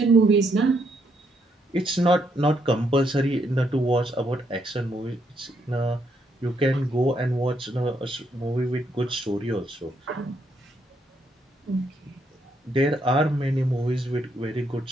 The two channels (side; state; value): both; normal; correlation 0.75